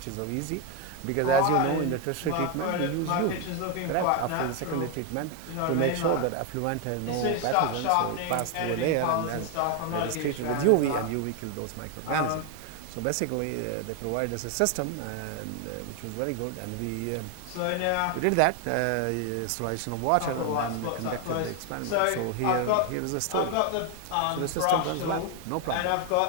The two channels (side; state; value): both; different; correlation 0.01